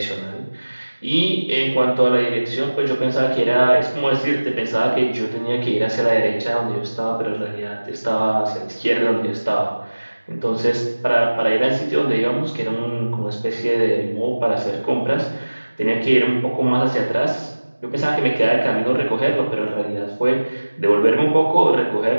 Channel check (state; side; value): inverted; both; correlation -1.00